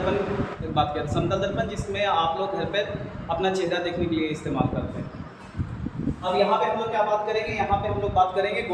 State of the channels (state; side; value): identical; both; correlation 1.00